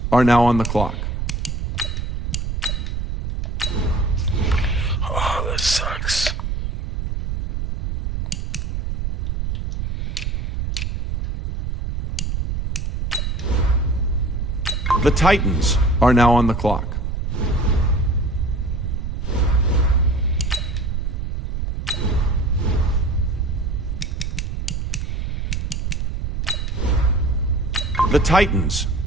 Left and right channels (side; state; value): right; noise; rumble, 2 dB below the sound